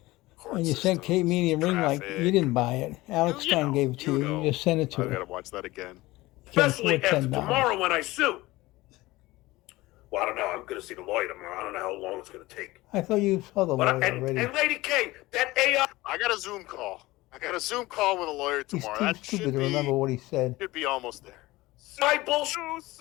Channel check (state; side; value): quieter; right; 19.4 dB